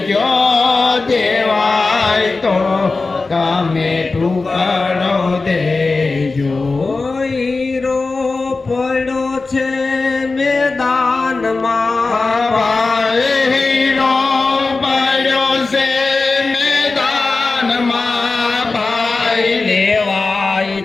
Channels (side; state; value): right; quieter; 3.8 dB